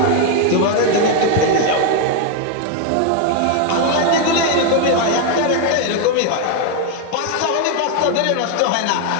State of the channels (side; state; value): both; different; correlation 0.01